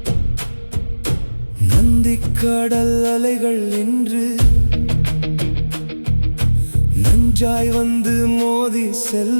நந்திக்கடல் அலைகள் என்று நஞ்சாய் வந்து மோதி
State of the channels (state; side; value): inverted; both; correlation -1.00